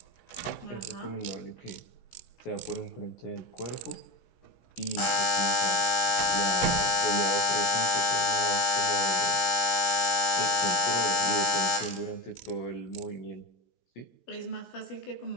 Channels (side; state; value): right; late; 16 ms